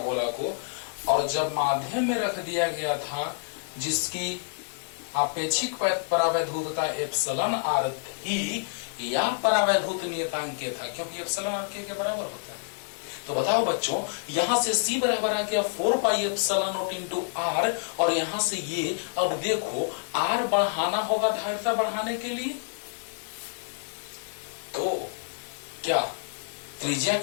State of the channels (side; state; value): right; silent; 59 dB below the other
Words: गोला को, और जब माध्यम में रख दिया गया था जिसकी आपेक्षिक परावैधूतता एप्सिलॉन आर थी, या परावैधूत नियतांक के था, क्योंकि एप्सिलॉन आर के बराबर होता है। तो बताओ बच्चों, यहां से C बराबर आ गया 4 pi epsilon not into R, और यहां से ये अब देखो R बढ़ाना होगा धारिता बढ़ाने के लिए, तो क्या त्रिज्या